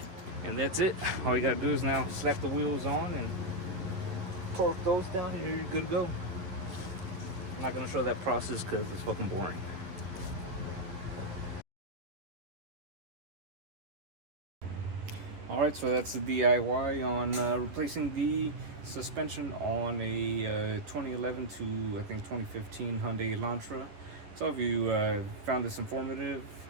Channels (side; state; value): left; late; 11 ms